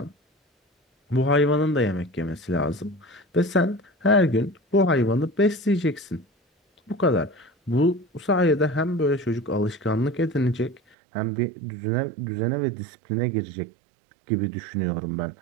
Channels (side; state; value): left; drops out; at 11.0 s